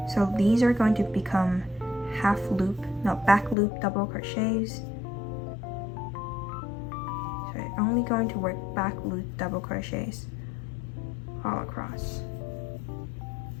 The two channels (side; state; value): right; drops out; at 3.6 s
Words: So these are going to become back loop double crochets. So you're only going to work back loop double crochets all across.